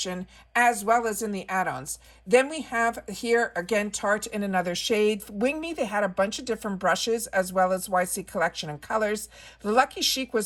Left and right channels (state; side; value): identical; both; correlation 1.00